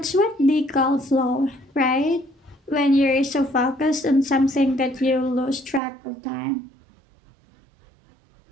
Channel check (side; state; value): left; drops out; at 5.8 s